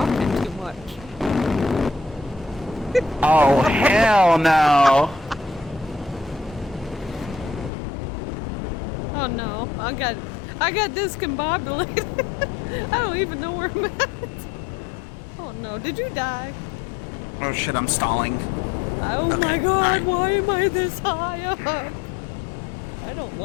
too much. Oh hell no! Oh no, I got discombobulated. I don't even know where I'm at. Oh no, did you die? Oh shit, I'm stalling. Oh my god, why am I this high up? I don't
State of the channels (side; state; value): right; drops out; at 7.7 s